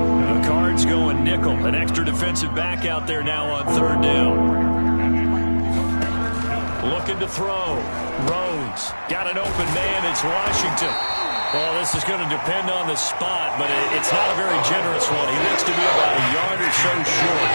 Cards going nickel. An extra defensive back out there now on 3rd down. Looking to throw. Rhodes got an open man. It's Washington. Well, this is going to depend on the spot, but it's not a very generous one. He looks to be about a yard or so short.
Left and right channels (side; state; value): both; inverted; correlation -1.00